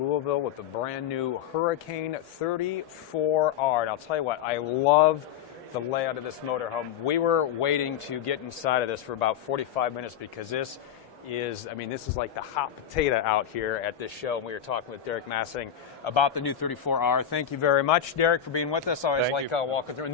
Louisville with the brand new Hurricane 34R. And I'll tell you what, I love the layout of this motorhome. We were waiting to get inside of this for about 45 minutes because this is, I mean, this is like the hot potato out here at this show. And we were talking with Derek Massing about the new 34R. Thank you very much, Derek, for being with us. I always like walking through. And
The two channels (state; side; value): quieter; right; 9.2 dB